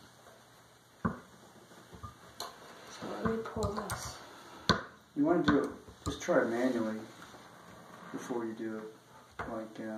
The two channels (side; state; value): both; identical; correlation 1.00